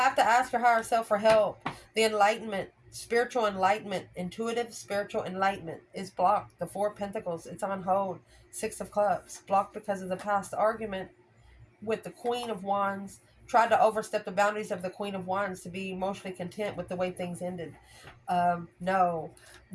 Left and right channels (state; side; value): identical; both; correlation 1.00